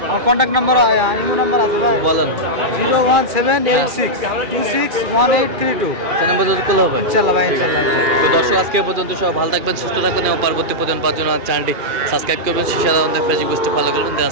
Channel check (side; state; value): left; late; 2.4 ms